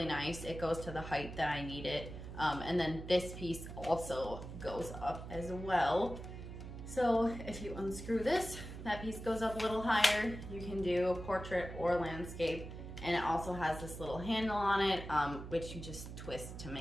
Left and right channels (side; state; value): right; noise; hum, 10 dB below the sound